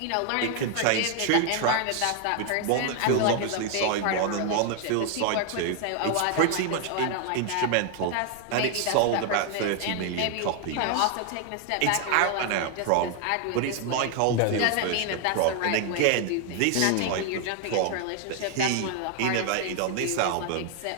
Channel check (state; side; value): different; both; correlation 0.00